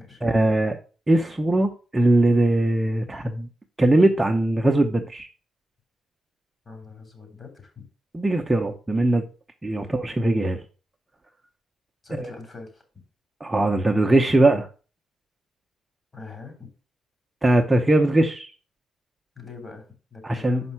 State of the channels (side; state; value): both; normal; correlation 0.93